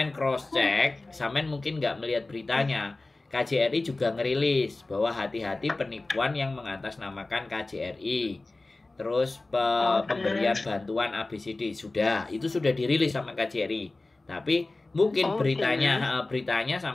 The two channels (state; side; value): quieter; right; 3.1 dB